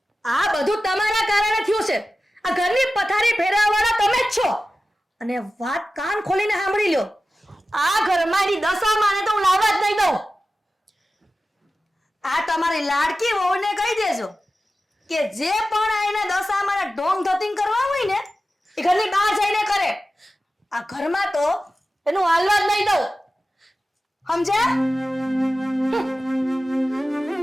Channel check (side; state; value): both; normal; correlation 0.94